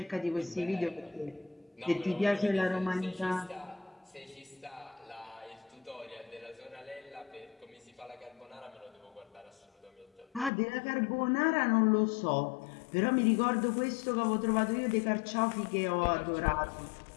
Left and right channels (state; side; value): drops out; right; at 10.5 s